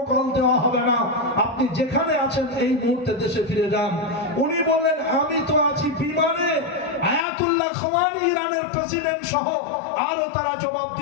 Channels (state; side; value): drops out; right; at 7.2 s